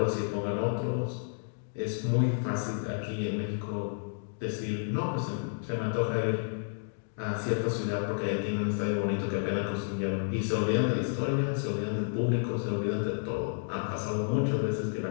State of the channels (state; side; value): silent; right; digital silence